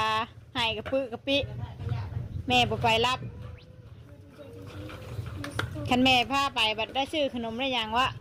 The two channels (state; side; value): identical; both; correlation 1.00